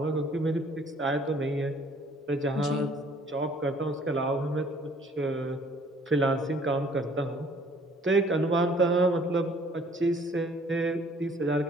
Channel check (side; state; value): both; normal; correlation 0.58